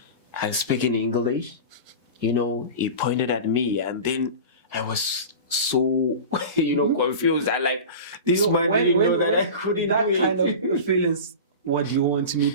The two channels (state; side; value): inverted; both; correlation -0.31